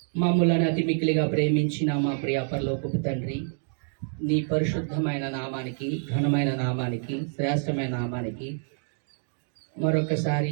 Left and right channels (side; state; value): left; silent; 60 dB below the other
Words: మమ్ములను అతి మిక్కిలిగా ప్రేమించిన మా ప్రియ పరలోకపు తండ్రి, నీ పరిశుద్ధమైన నామానికి, ఘనమైన నామానికి, శ్రేష్టమైన నామానికి